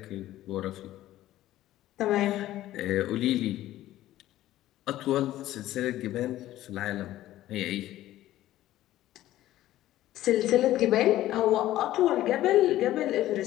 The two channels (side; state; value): right; quieter; 14.4 dB